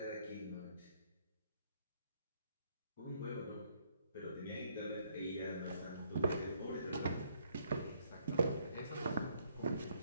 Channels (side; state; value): both; inverted; correlation -0.69